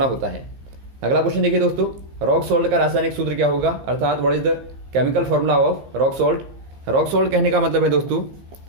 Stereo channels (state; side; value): late; left; 15 ms